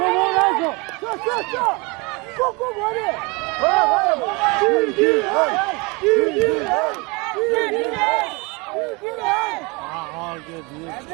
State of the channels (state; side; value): quieter; left; 27.6 dB